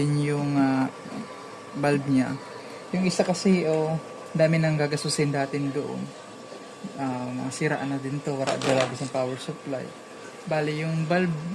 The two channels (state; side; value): identical; both; correlation 1.00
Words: yung bulb niya. Yung isa kasi, dami nang gagasusin natin doon. Mga siraan na din to. Wala talaga sa power supply. Bali, yung bulb